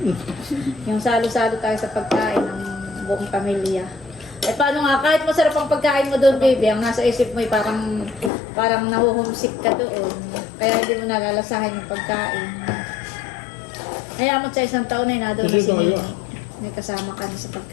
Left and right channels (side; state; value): right; drops out; at 8.3 s